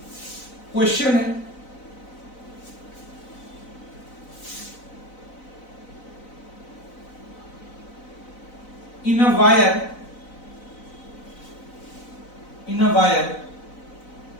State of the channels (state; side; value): late; right; 4.0 ms